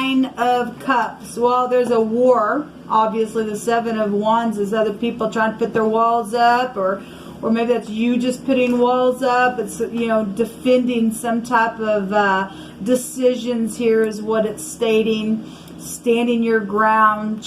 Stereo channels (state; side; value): identical; both; correlation 1.00